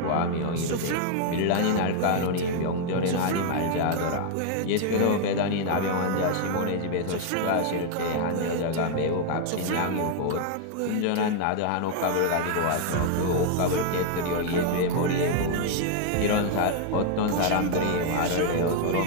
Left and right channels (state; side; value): different; both; correlation 0.00